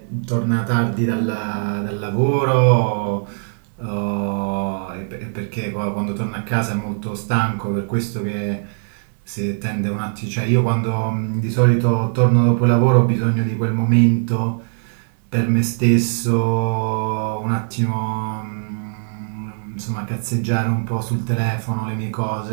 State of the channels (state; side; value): silent; left; digital silence